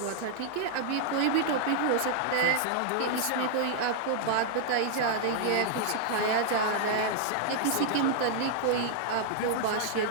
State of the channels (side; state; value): both; different; correlation -0.01